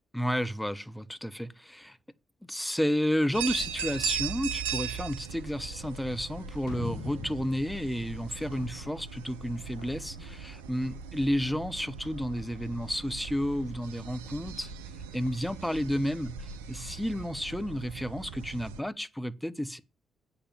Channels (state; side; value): normal; both; correlation 0.87